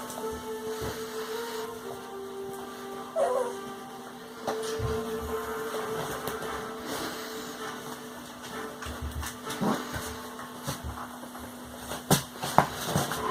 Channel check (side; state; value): both; identical; correlation 1.00